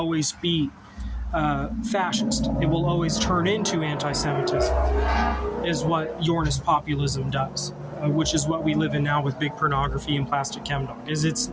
be fascist. It will always turn into anti-Semitism. Is what Yornist populism does, which is what we live in now with big pornography and plastic chemdog.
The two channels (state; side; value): identical; both; correlation 1.00